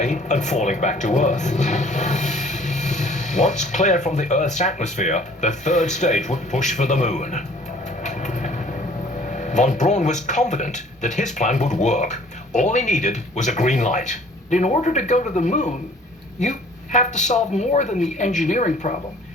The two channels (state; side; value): normal; both; correlation 0.54